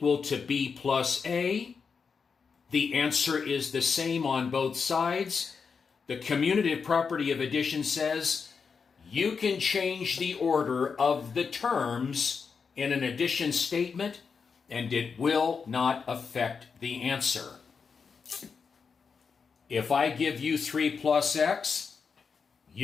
to B plus A. The answer is the same on both sides. The commutative property of addition says you can change the order of the terms in an addition statement, and it will not affect the answer. If I give you 3 plus x,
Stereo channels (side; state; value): right; quieter; 5.6 dB